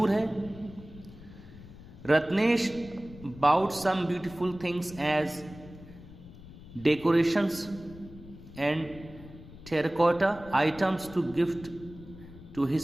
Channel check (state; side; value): noise; left; rumble, 17 dB below the sound